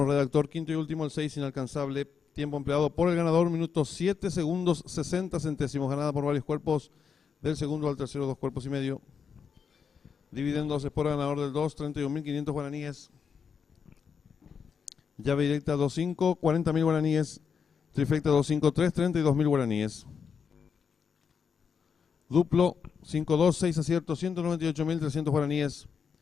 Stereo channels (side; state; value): right; quieter; 6.5 dB